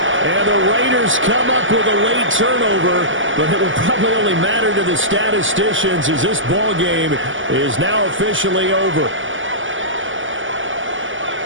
And the Raiders come up with a late turnover, but it will probably only matter to the statisticians as this ball game is now officially over.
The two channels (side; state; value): left; late; 0.57 ms